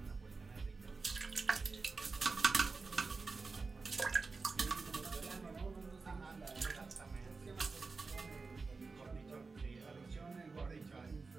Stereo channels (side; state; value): left; quieter; 4.2 dB